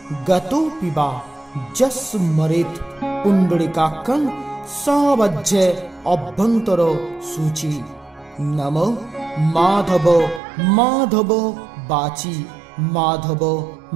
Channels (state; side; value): drops out; left; at 10.4 s